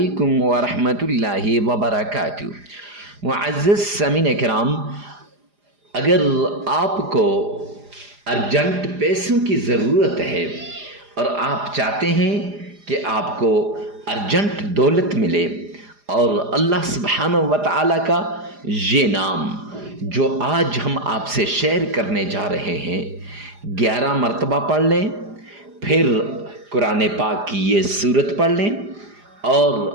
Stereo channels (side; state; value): left; late; 4.9 ms